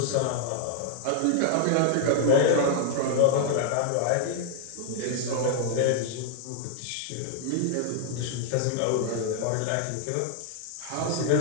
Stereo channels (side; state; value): both; different; correlation 0.00